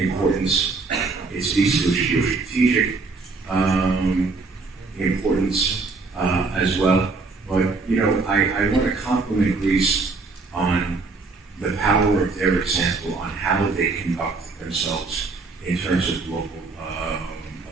It speaks to its geostrategic importance as well. But I want to compliment Greece on the power of their example on how they conduct themselves in terms of global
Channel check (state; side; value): quieter; left; 4.0 dB